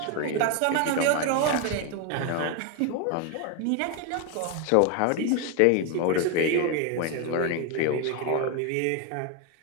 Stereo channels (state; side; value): different; both; correlation 0.01